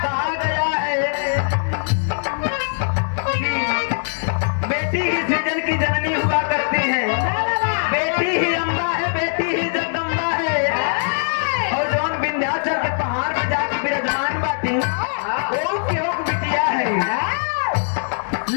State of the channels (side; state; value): right; silent; digital silence